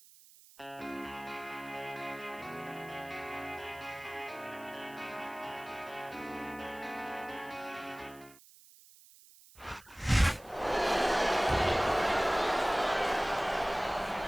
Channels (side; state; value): right; noise; hiss, 23 dB below the sound